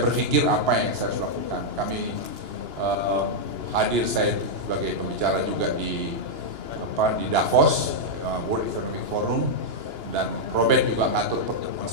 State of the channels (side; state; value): left; late; 2.9 ms